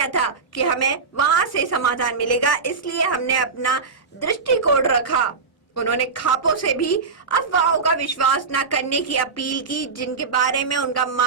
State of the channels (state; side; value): quieter; left; 4.8 dB